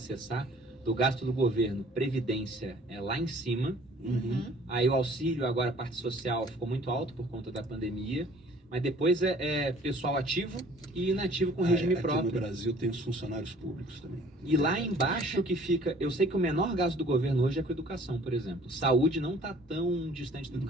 do gasto do governo, Previdência é lá em cima. Aí o auxílio, agora a parte social, ficou muito alto por conta da pandemia. Mas depois é pessoal ativo e inativo com regime próprio. Aqui no Brasil tem os funcionários públicos também. E lá embaixo que fica... Eu sei que o menor gasto do governo hoje é com educação, por exemplo. Saúde não está tão distante da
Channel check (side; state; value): both; normal; correlation 0.53